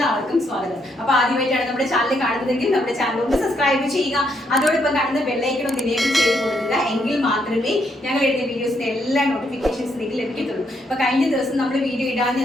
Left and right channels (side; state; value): both; normal; correlation 0.75